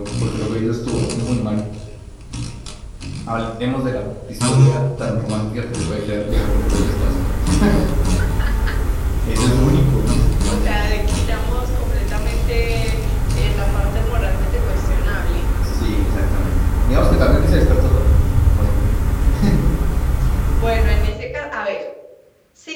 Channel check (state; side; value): identical; both; correlation 1.00